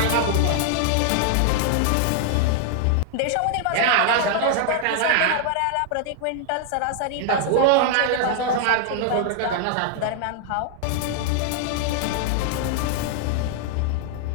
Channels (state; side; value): different; both; correlation 0.00